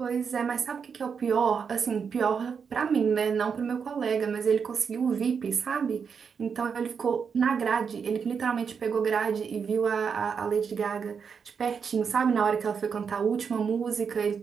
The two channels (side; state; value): left; quieter; 6.3 dB